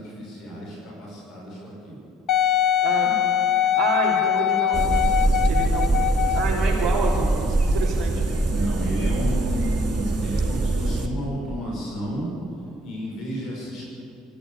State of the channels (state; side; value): normal; both; correlation 0.57